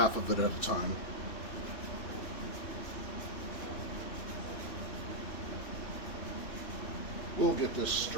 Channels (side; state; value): right; late; 3.1 ms